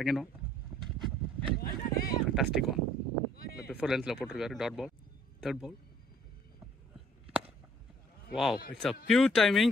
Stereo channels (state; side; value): normal; both; correlation 0.60